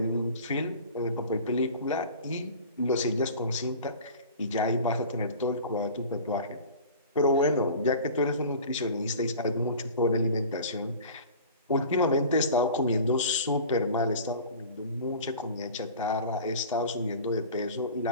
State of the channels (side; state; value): both; inverted; correlation -0.40